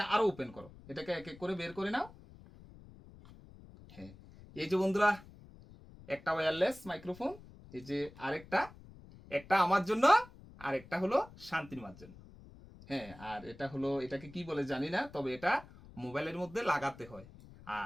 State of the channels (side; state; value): left; noise; rumble, 20 dB below the sound